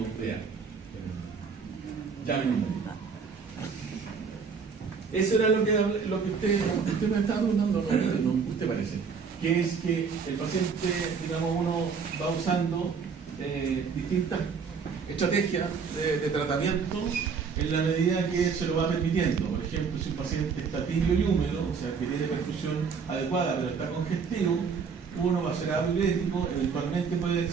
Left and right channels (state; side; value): quieter; left; 5.7 dB